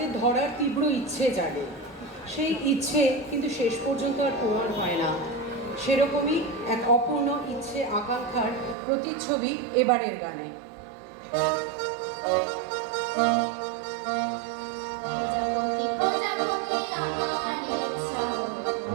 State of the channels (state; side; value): drops out; left; at 8.8 s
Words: ধরার তীব্র ইচ্ছে জাগে। সেই ইচ্ছে কিন্তু শেষ পর্যন্ত আর পূরণ হয় না। সেরকমই এক অপূর্ণ ইচ্ছে আকাঙ্ক্ষার প্রতিচ্ছবি এবারের গানে।